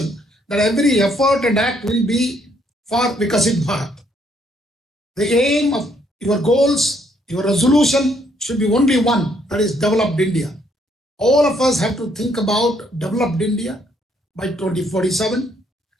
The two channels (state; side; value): normal; both; correlation 0.69